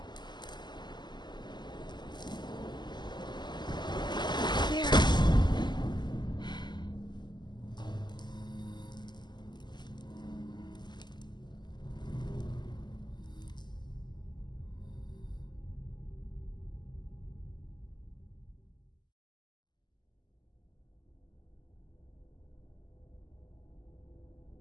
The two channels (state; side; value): late; right; 0.21 ms